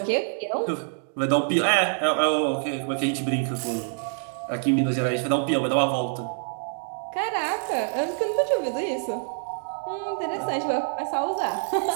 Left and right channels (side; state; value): left; silent; digital silence